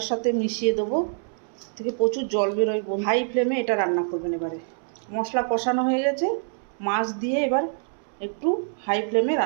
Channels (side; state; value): left; silent; 61 dB below the other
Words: সাথে মিশিয়ে দেবো। থেকে প্রচুর জল বেরোয়। হাই ফ্লেমে এটা রান্না করবেন। এবারে মশলা কষানো হয়ে গেছে, মাছ দিয়ে এবার একটু হাই ফ্লেমে